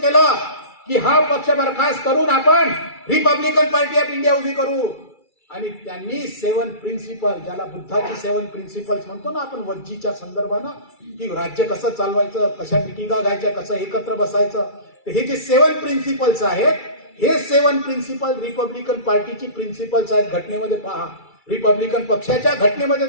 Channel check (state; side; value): late; right; 2.3 ms